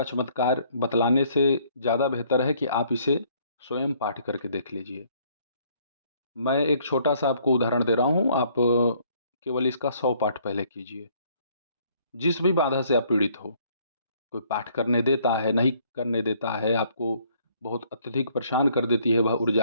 चमत्कार बतलाने से ज़्यादा बेहतर है कि आप इसे स्वयं पाठ करके देख लीजिए। मैं एक छोटा सा आपको उदाहरण दे रहा हूँ, आप केवल इसका 100 पाठ पहले कीजिए। जिस भी बाधा से आप पीड़ित हो, कोई पाठ करने देता है, नहीं करने देता है, आपको बहुत अत्यधिक परेशान कर देती है वह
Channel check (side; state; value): both; inverted; correlation -0.63